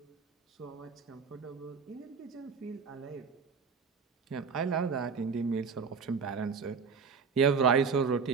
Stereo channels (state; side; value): quieter; left; 5.5 dB